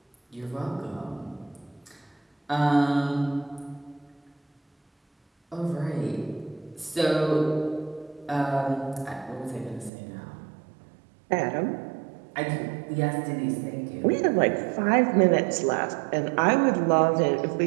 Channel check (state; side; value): drops out; left; at 9.9 s